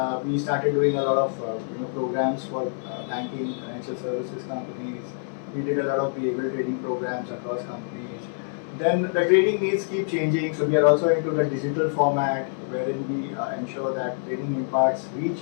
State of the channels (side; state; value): right; silent; 60 dB below the other